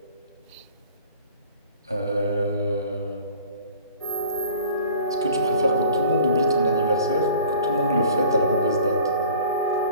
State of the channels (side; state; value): both; inverted; correlation -0.47